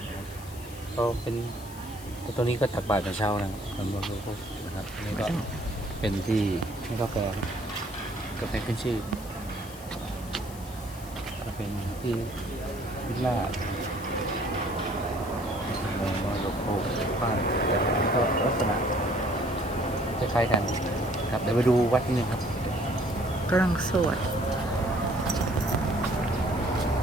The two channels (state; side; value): noise; left; hiss, 17 dB below the sound